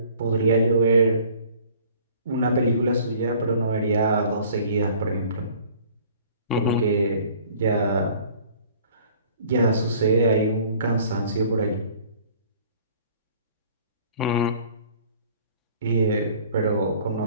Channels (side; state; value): both; inverted; correlation -0.53